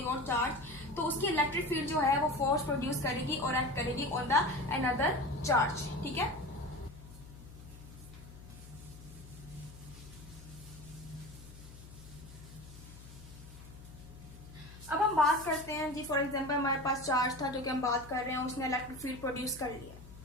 और चार्ज, तो उसकी इलेक्ट्रिक फील्ड जो है वो फोर्स प्रोड्यूस करेगी और एक्ट करेगी ऑन द अनदर चार्ज। ठीक है, अब हम बात करते हैं जी, फॉर एग्जांपल हमारे पास चार्ज था जो कि हम बात कर रहे हैं, उसने इलेक्ट्रिक फील्ड प्रोड्यूस कर लिया।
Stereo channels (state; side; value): noise; left; hum, 17 dB below the sound